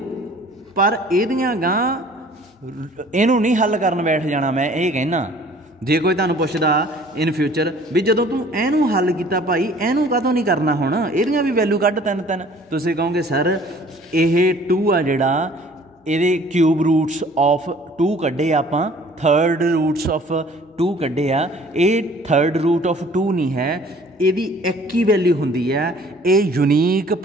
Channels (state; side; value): normal; both; correlation 0.52